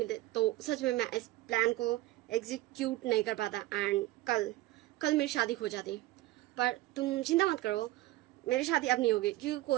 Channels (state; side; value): quieter; left; 17.2 dB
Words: तो सच में मैं इस प्लान को एग्जीक्यूट नहीं कर पाता एंड कल मेरी शादी हो जाती। पर तुम चिंता मत करो, मेरी शादी अब नहीं होगी, क्योंकि